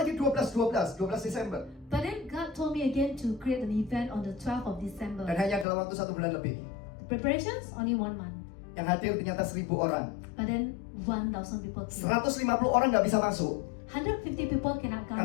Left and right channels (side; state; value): right; drops out; at 5.7 s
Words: 12 Desember. But then God told me again to create an event on the 12th of December. Dan hanya dalam waktu 1 bulan lebih. Preparations only 1 month. Yang hadir ternyata 1.000 orang. But then 1,000 people came. 150 orang nggak bisa masuk. 150 people cannot come.